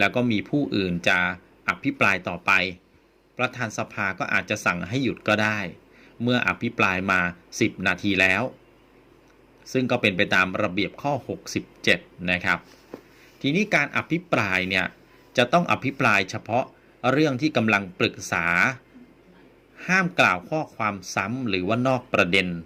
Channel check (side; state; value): both; identical; correlation 1.00